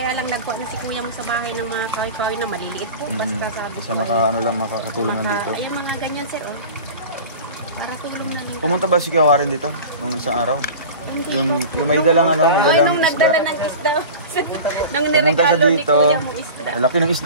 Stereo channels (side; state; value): both; inverted; correlation -0.35